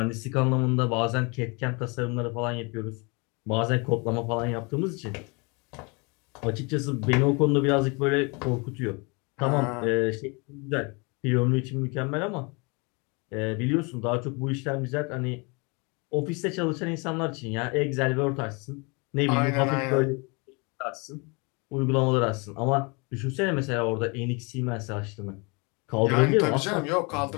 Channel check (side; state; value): right; quieter; 30.4 dB